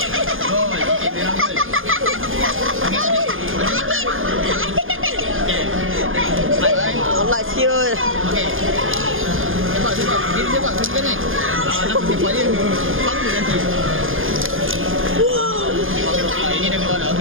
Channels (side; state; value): left; late; 0.59 ms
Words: Gol. Okay, memang gol. nak sepak dia. Sama nanti. Ini dah keluar dah.